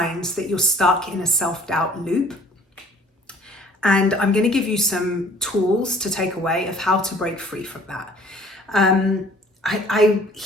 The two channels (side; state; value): both; normal; correlation 0.53